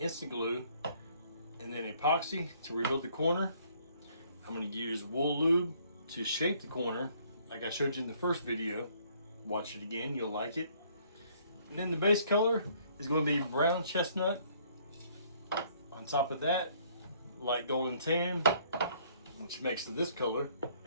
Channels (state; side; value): inverted; both; correlation -0.62